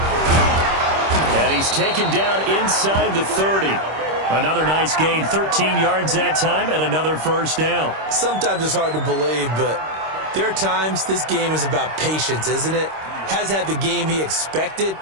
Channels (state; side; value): late; left; 26 ms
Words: And he's taken down inside the 30. Another nice gain, 13 yards that time, and another 1st down. Sometimes it's hard to believe, but there are times this game is about patience, isn't it? Has had the game he expected,